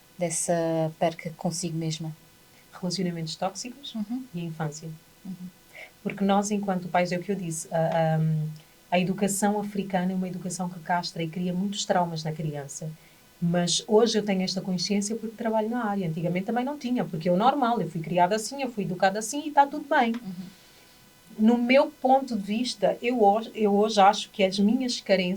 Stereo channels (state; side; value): identical; both; correlation 1.00